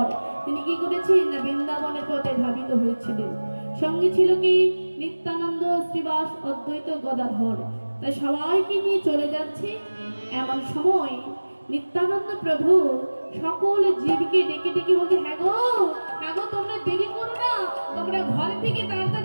তিনি কি করেছেন না বৃন্দাবনের পথে ধাবিত হয়েছিলেন। সঙ্গে ছিল কি নিত্যানন্দ, শ্রীবাস, অদ্বৈত, গদাধর। তাই সবাইকে নিয়ে চলে যাচ্ছে। এমন সময় নিত্যানন্দ প্রভু সকল জীবকে ডেকে ডেকে বলছে, হ্যাঁ গো তোমরা দেরি করো না, তোমরা ঘর থেকে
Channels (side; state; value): both; inverted; correlation -1.00